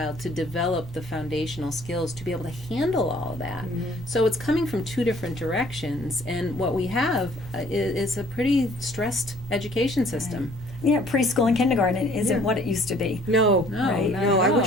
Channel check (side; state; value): both; normal; correlation 0.57